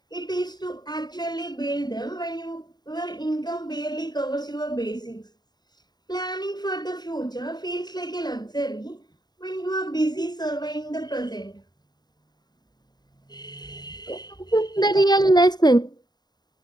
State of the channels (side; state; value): right; late; 0.20 ms